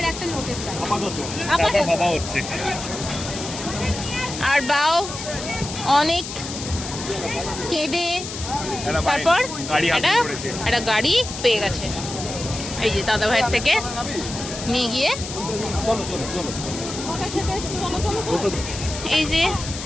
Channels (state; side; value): noise; left; hiss, 8 dB below the sound